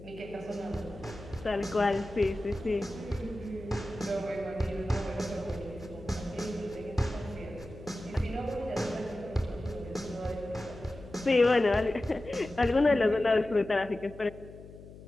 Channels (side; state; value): left; noise; hum, 17 dB below the sound